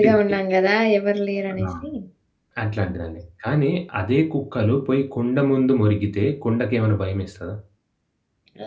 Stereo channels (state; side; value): identical; both; correlation 1.00